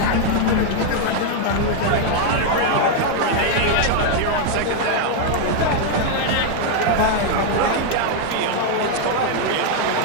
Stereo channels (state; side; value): different; both; correlation 0.00